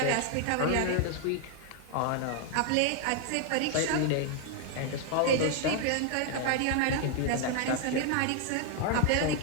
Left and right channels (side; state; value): both; different; correlation 0.00